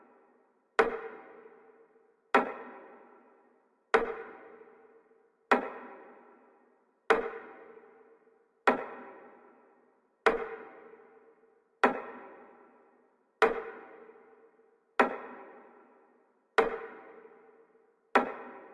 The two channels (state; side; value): identical; both; correlation 1.00